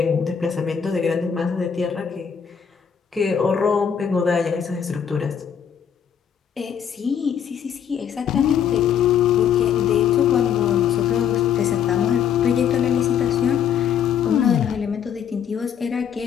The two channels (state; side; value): quieter; right; 8.1 dB